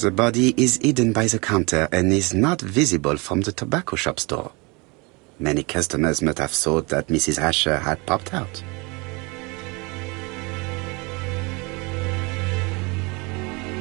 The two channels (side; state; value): left; quieter; 27.8 dB